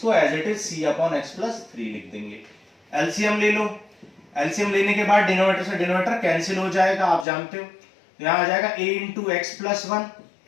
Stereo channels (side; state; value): right; drops out; at 7.2 s